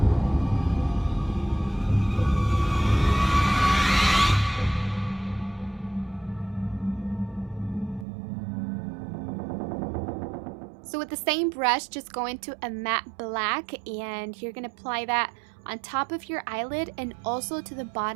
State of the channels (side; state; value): left; drops out; at 8.1 s